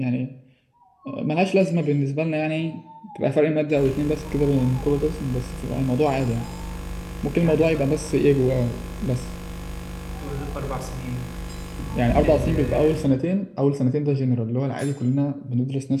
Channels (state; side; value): identical; both; correlation 1.00